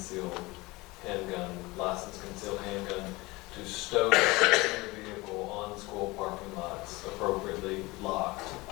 licensed concealed handgun, to stow their vehicle on school parking lots appropriately locked, of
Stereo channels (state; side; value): quieter; right; 22.3 dB